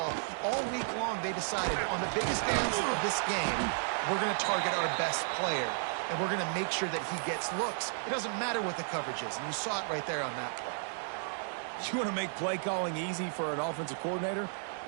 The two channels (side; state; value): left; silent; digital silence